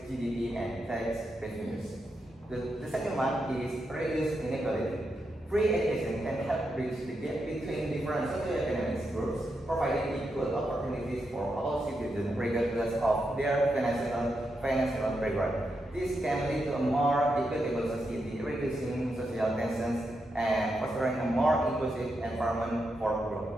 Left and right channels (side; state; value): both; normal; correlation 0.85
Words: GDP and tax revenues. The second one is reduce inequality. Free education can help bridge the gap between different socioeconomic groups, providing equal opportunities for all citizens regardless of their financial background. This can lead to a more equitable society, reducing social tensions and fostering a more inclusive environment for